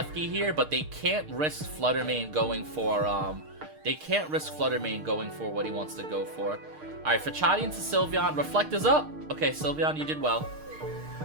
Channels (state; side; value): late; left; 6.5 ms